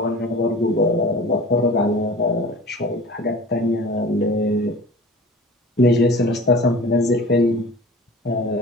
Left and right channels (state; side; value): normal; both; correlation 0.40